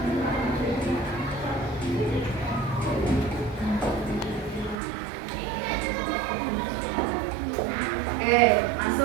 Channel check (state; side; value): drops out; left; at 4.8 s